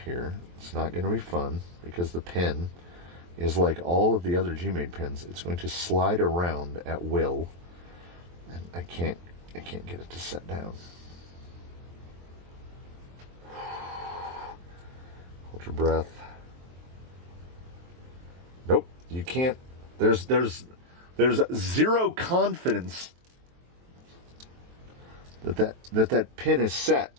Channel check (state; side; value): late; left; 23 ms